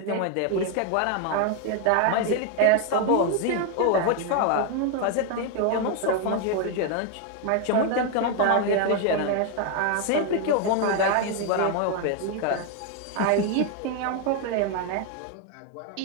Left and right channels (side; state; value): both; different; correlation 0.01